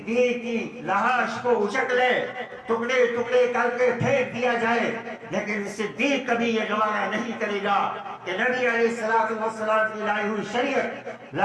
کی لاش کو اچک لے، ٹکڑے ٹکڑے کر کے پھینک دیا جائے، لیکن صدیق کبھی یہ گوارا نہیں کرے گا کہ نبی علیہ السلام کی لائی ہوئی شریعت،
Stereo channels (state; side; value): identical; both; correlation 1.00